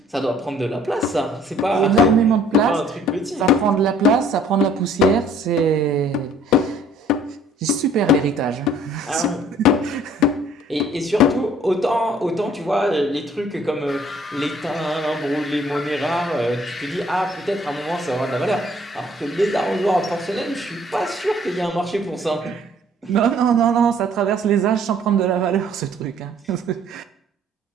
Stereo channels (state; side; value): normal; both; correlation 0.58